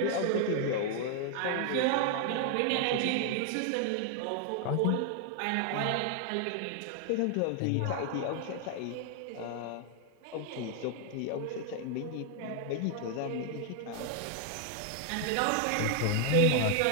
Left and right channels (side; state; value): both; different; correlation 0.00